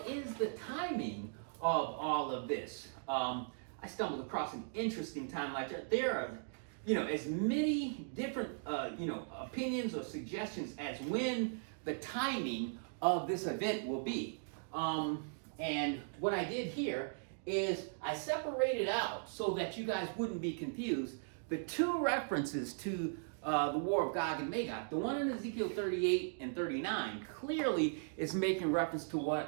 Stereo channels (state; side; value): silent; left; digital silence